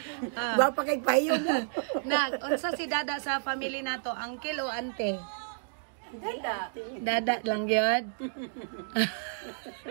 Ba pa kay payo mo. Nak, unsa si Dada sa family nato? Uncle o ante? Dada. Dada lang yun.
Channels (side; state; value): left; silent; digital silence